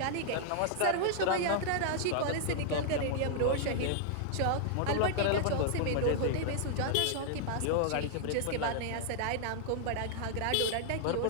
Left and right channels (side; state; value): both; different; correlation -0.01